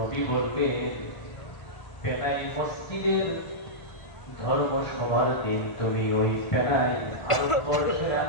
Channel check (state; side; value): late; right; 1.5 ms